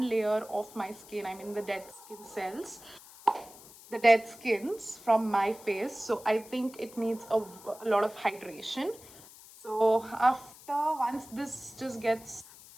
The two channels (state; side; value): noise; left; hiss, 20 dB below the sound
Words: layer of my skin. I mean the dead skin cells, the dead skins from my face. So I think it needs a lot of hydration. So after, once this just gets